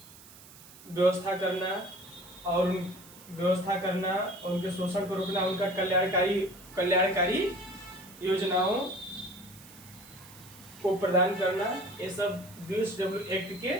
व्यवस्था करना और उनके शोषण को रोकना, उनका कल्याणकारी योजनाओं को प्रदान करना, ये सब BOCW एक्ट के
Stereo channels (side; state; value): right; noise; hiss, 20 dB below the sound